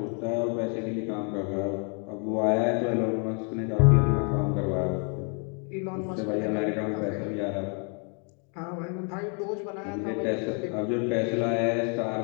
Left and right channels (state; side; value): quieter; right; 39.4 dB